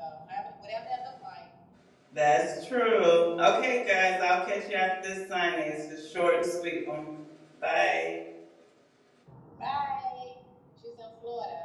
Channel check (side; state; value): both; identical; correlation 1.00